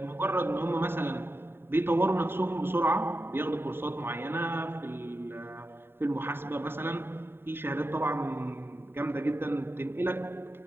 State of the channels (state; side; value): late; left; 0.11 ms